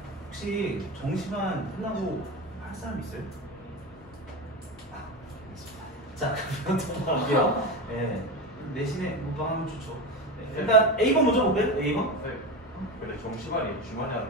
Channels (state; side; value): normal; both; correlation 0.22